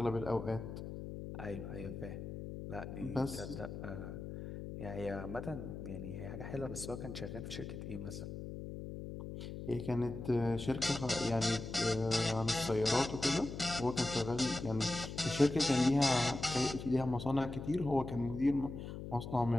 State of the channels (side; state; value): left; noise; hum, 8 dB below the sound